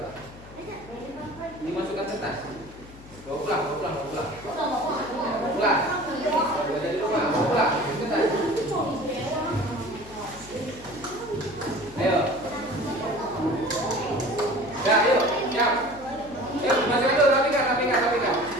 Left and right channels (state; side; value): noise; left; hum, 19 dB below the sound